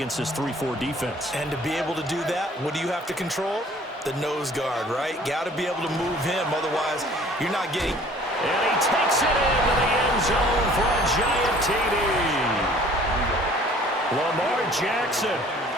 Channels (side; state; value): both; normal; correlation 0.53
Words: this 3-4 defense. And to be able to do that, what do you have to control? The nose guard, right? Got to be able to move him, otherwise you're not getting. And he takes it into the end zone for a giant TD. Lamar Jackson,